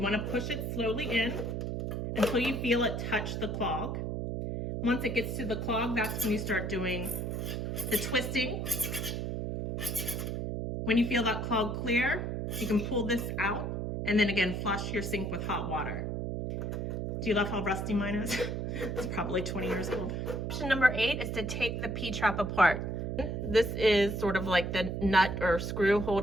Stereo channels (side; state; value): right; noise; hum, 3 dB below the sound